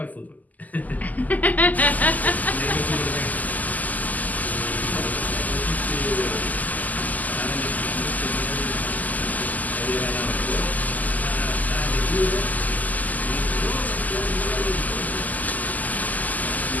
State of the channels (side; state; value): right; late; 0.080 ms